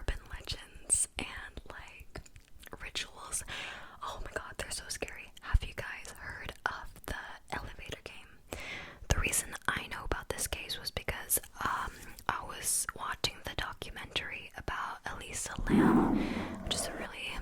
legends and like rituals. Oh my god, they're so scary. Have you guys heard of the elevator game? The reason I know about this case was because I was watching the documentary about Elisa Lam, which is a really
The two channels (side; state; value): both; identical; correlation 1.00